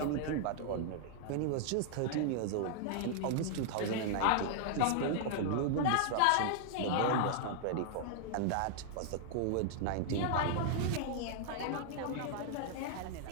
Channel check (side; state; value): both; different; correlation -0.01